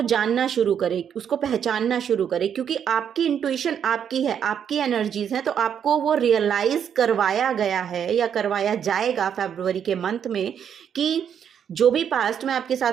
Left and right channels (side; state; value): left; quieter; 8.4 dB